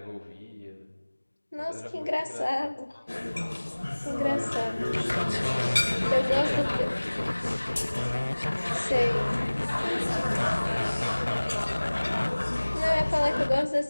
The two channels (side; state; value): both; inverted; correlation -1.00